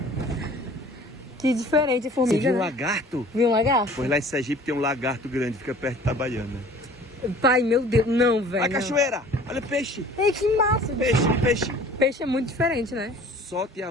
Que diferente a formiga, Você viu um né? lagarto? Viu um lagarto? Pois lá em Sergipe tem um lagarto grande, fica perto de Itabaiana. Pai, meu Deus. Não, velho. Olha a cachoeira, olha o peixe. Ei, que massa. Peixe. Peixe é muito diferente, né? Solte a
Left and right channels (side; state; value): both; normal; correlation 0.48